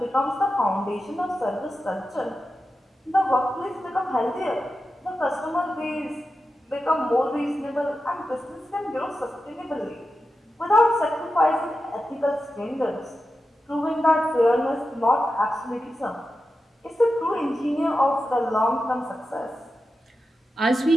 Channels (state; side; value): normal; both; correlation 0.91